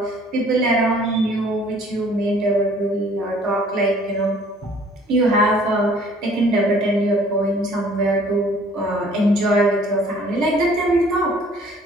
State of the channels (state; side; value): normal; both; correlation 0.56